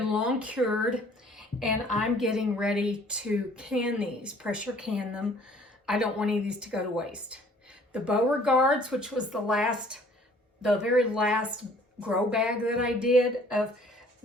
long cured, and I'm getting ready to can these, pressure can them. I don't want any of these to go to waste. The Beauregards, which was the very last grow bag that I did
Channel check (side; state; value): both; normal; correlation 0.55